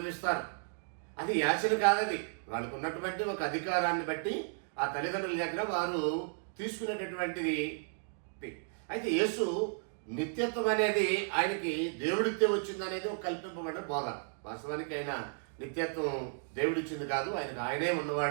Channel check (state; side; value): silent; left; digital silence